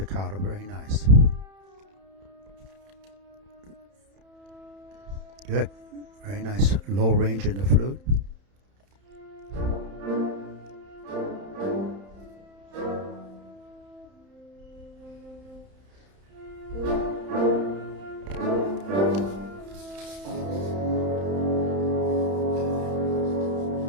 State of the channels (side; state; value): left; late; 31 ms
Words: very nice. Good, very nice low range in the flute.